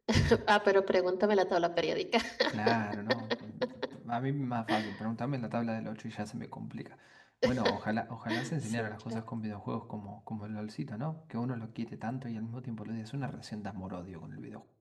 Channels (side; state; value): both; identical; correlation 1.00